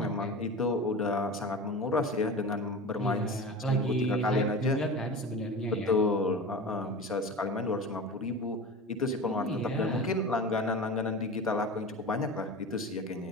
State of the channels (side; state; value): both; normal; correlation 0.31